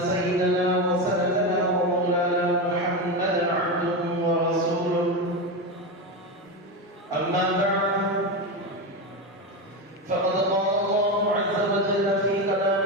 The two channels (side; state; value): both; normal; correlation 0.15